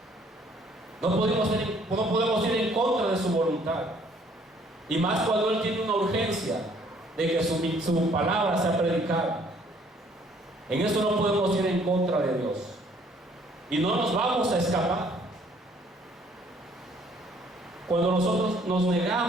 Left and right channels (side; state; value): both; normal; correlation 0.61